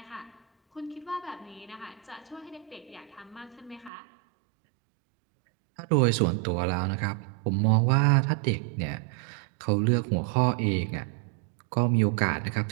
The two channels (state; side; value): drops out; left; at 3.9 s